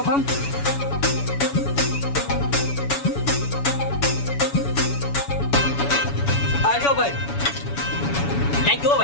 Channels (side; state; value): right; late; 7.1 ms